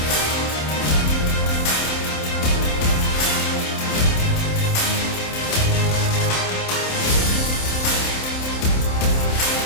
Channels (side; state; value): right; late; 27 ms